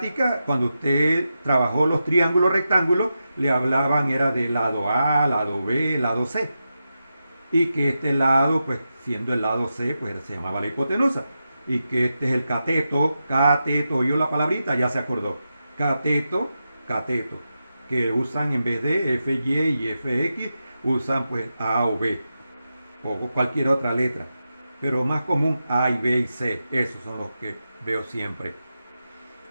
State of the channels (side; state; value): both; inverted; correlation -0.89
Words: cuando usted trabajó los triángulos rectángulos, le hablaban era de lado A, lado B, lado C. Y que este lado, pues siendo el lado C, pues se llamaba la hipotenusa. Y que este es el cateto, oyó la palabrita, ya se acordó. Cateto, cateto. Que usan en vez de FY y FX, usan pues A o B. O cualquier otra letra. Pero más común A y B y C. Esos son los que veo siempre.